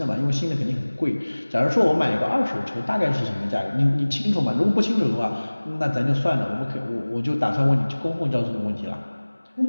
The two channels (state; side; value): inverted; both; correlation -1.00